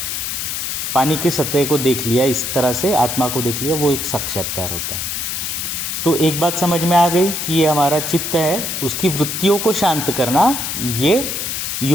पानी की सतह को देख लिया, इस तरह से आत्मा को देख लिया, वो एक साक्षात्कार होता है। तो एक बात समझ में आ गई कि ये हमारा चित्त है, उसकी वृत्तियों को शांत करना ये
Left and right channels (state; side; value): noise; left; hiss, 3 dB below the sound